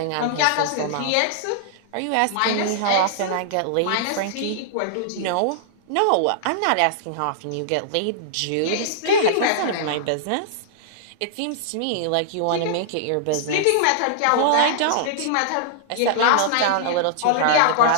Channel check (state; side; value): different; both; correlation -0.01